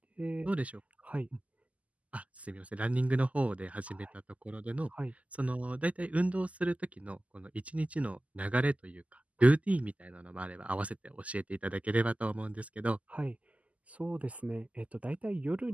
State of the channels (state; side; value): late; left; 0.071 ms